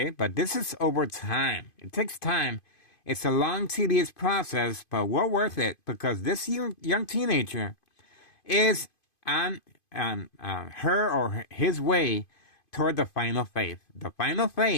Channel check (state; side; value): late; right; 2.5 ms